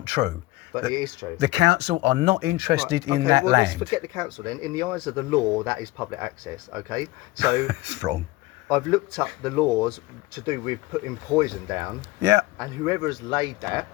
true. But it is true. The council are not interested in that Let's land. forget the council then. In the eyes of the law, that is public access. Okay, so It's wrong. I've looked up the laws to do with putting poison down, Yeah, and whoever has laid that,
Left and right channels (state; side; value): quieter; right; 19.6 dB